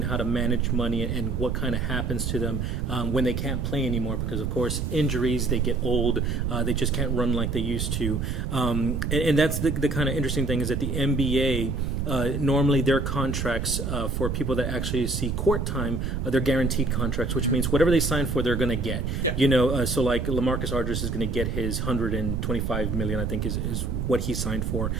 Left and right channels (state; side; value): noise; right; rumble, 2 dB below the sound